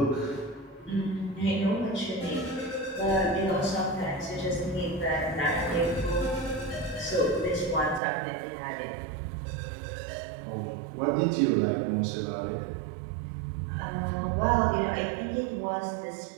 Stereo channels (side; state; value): left; drops out; at 8.0 s